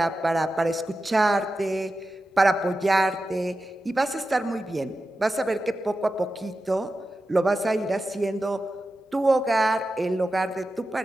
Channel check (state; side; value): normal; both; correlation 0.92